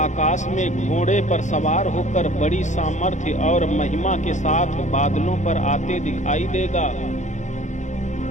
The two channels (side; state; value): right; late; 0.35 ms